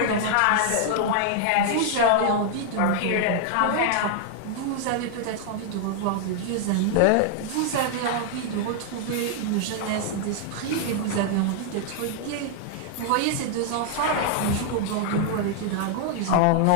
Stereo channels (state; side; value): different; both; correlation 0.00